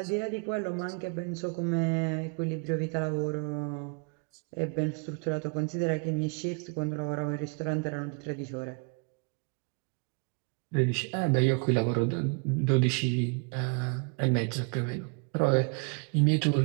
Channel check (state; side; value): quieter; left; 35.8 dB